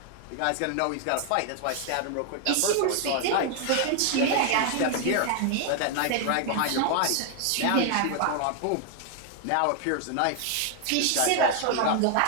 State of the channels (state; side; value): different; both; correlation 0.00